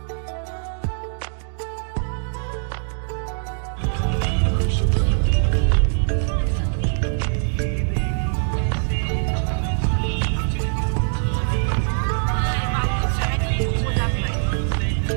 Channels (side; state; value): left; silent; digital silence